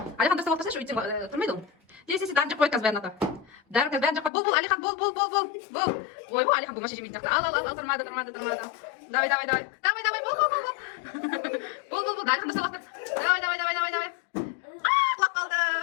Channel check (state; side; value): drops out; right; at 4.3 s